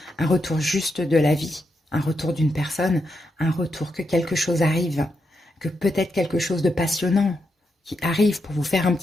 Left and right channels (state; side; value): normal; both; correlation 0.83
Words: Un retour juste de la vie. Un retour d'une personne. Un retour que quelque chose arrive. Que peut-être quelque chose de passionnant qui arrive pour vous faire un